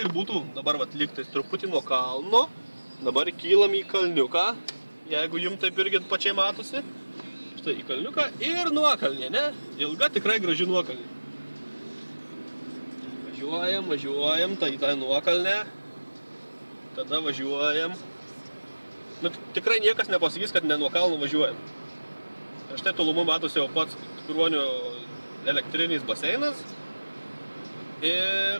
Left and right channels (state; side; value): inverted; both; correlation -1.00